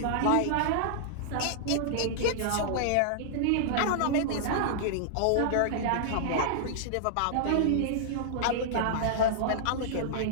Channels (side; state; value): both; different; correlation -0.01